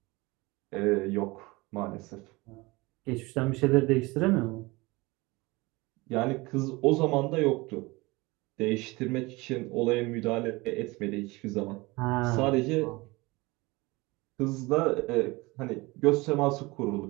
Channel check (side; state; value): left; quieter; 23.2 dB